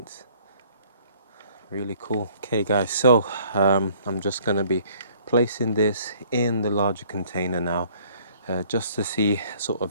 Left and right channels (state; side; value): inverted; both; correlation -0.58